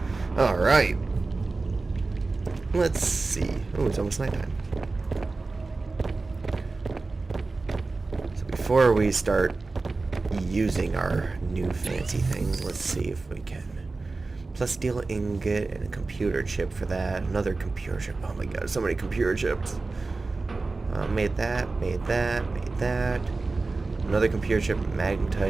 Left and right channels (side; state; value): left; quieter; 3.6 dB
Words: Alright. Let's see. Oh, it's almost nighttime. So before we start using our new fancy things, let's see if we can. Plus steel ingot and a computer chip for that. Another computer chip. Oh my god, so many computer chips. Made that. Another computer chip,